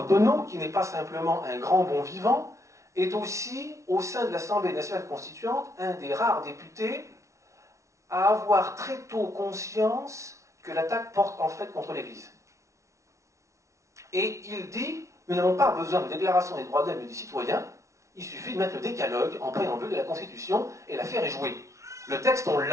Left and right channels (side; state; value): left; late; 0.14 ms